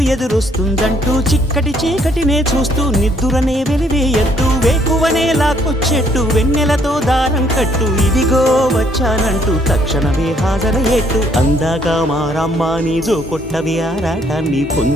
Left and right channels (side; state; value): both; normal; correlation 0.66